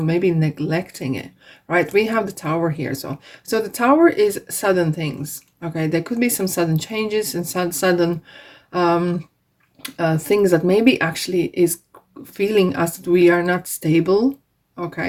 maybe neglecting it, right? We have the Tower here. So the Tower is sudden things. Okay, there could be some sudden changes and sudden things that maybe actually is feeling us that we are not stable.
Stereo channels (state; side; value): identical; both; correlation 1.00